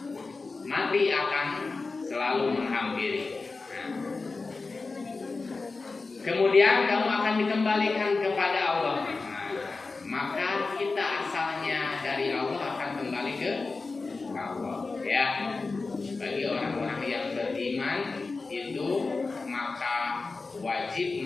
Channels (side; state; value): right; quieter; 3.9 dB